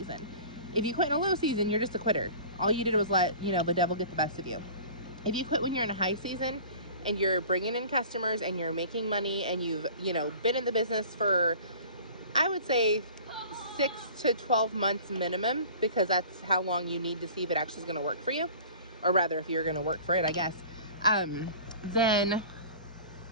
If you quit in a low season, you're just a quitter. All you did was let, the devil get the best of you. If you quit when you're in a high season and you're bringing in customers and you're making money and you've, been in the business for, I would say, 6 to 12 months minimum, because that's how long you need to see if it actually is going to work for you, or rather if you're going to work for it, I guess, then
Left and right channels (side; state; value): both; inverted; correlation -0.43